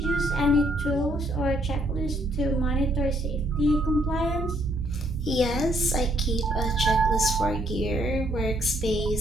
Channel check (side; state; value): both; normal; correlation 0.68